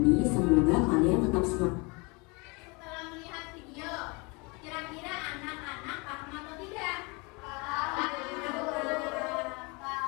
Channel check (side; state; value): right; quieter; 28.7 dB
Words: semoga kalian tetap semangat. Setelah melihat video, kira-kira anak-anak paham atau tidak?